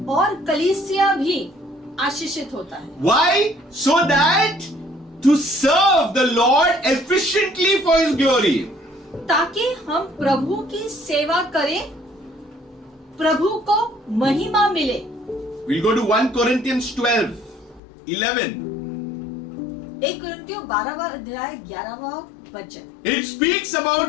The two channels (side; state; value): right; drops out; at 17.8 s